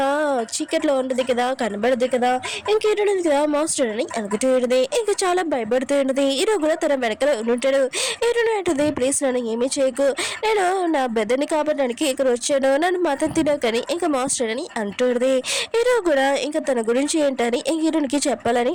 చీకట్లో ఉంటుంది కదా కనబడదు కదా. ఇంకా ఇటు కదా మాస్టర్ అని అనుకుంటూ ఉంటుంది. ఇంకా చాలా భయపడుతూ ఉంటుంది. హీరో కూడా తన వెనకాల ఉంటాడు. ఏంటంటే ప్లీజ్ నన్ను ఏమీ చేయకు, నేను నా బెదర్ని కాపాడడానికి ఇక్కడ వచ్చాను, నన్ను మతం తినకని ఇంకా మాస్టర్ అని అంటుంది. హీరో కూడా ఇంకా తన గురించి ఏంటని హీరోనికి చెప్పాలని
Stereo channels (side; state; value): both; identical; correlation 1.00